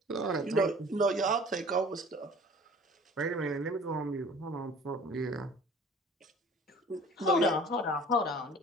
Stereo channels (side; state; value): both; normal; correlation 0.47